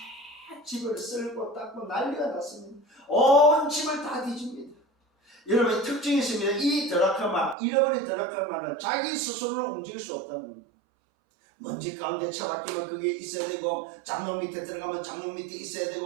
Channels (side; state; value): left; drops out; at 7.6 s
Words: 집을 쓸고 닦고 난리가 났습니다. 온 집을 다 뒤집니다. 여러분, 특징이 있습니다. 이 드라크마, 잃어버린 드라크마는 자기 스스로는 움직일 수 없다는 겁니다. 먼지 가운데 처박히면 그게 있어야 되고, 장롱 밑에 들어가면 장롱 밑에 있어야